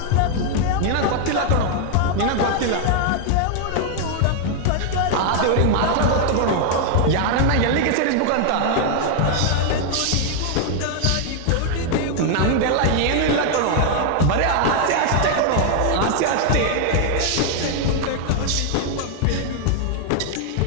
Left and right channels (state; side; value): different; both; correlation 0.00